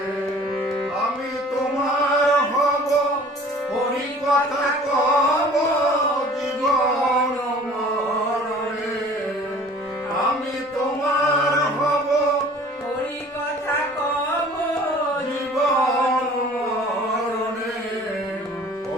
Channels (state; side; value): normal; both; correlation 0.48